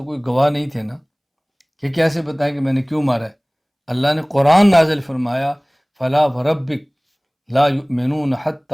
کوئی گواہ نہیں تھے نا کہ کیسے بتائیں کہ میں نے کیوں مارا ہے۔ اللہ نے قرآن نازل فرمایا فلا وربک لا یؤمنون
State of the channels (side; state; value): both; identical; correlation 1.00